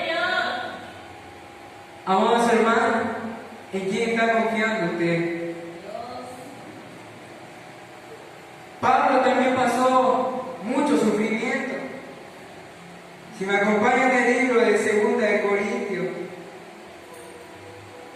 Dios. Amados hermanos, ¿en quién está confiando usted? Pablo también pasó mucho sufrimiento. Si me acompañan en el libro de 2 de Corintios,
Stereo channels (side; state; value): both; identical; correlation 1.00